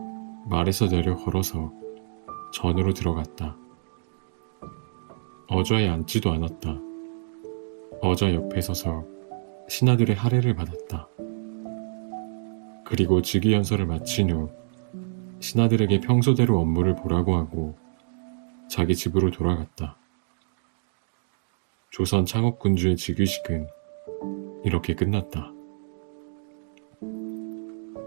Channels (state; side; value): silent; left; digital silence